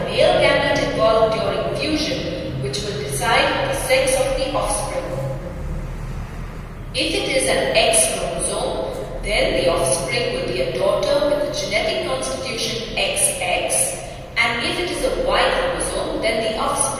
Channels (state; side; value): identical; both; correlation 1.00